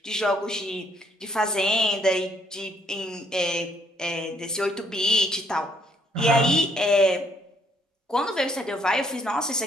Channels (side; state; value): both; normal; correlation 0.67